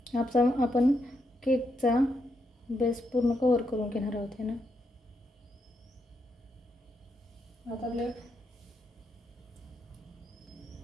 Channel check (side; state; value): both; normal; correlation 0.81